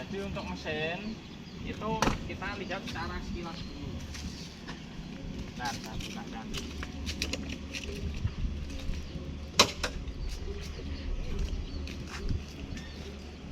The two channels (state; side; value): identical; both; correlation 1.00